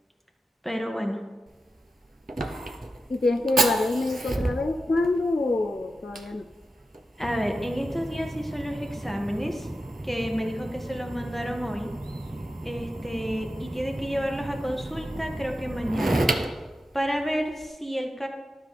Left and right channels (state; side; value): normal; both; correlation 0.91